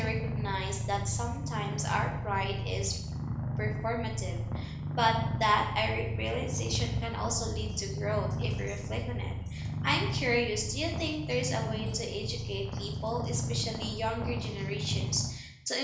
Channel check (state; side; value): identical; both; correlation 1.00